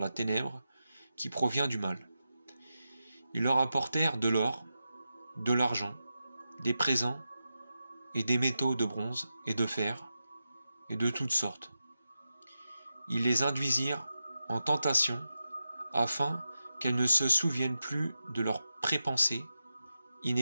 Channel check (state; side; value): inverted; both; correlation -0.90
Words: ténèbre qui provient du mal. Ils leur apportèrent de l'or, de l'argent, des présents et des métaux de bronze et de fer et de toutes sortes. Ils les induisirent en tentation afin qu'elles ne se souviennent plus de leur prépensée